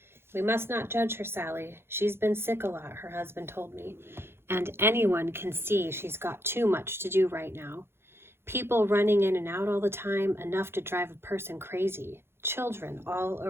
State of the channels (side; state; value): left; late; 0.12 ms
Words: "We must not judge her, Sally. She's been sick a lot," her husband told me, "and anyone can see she's got too much to do right now. People running in and out all the time, enough to drive a person crazy. Children all